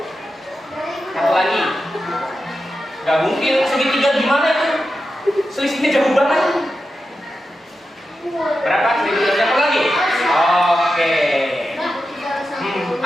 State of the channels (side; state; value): both; normal; correlation 0.90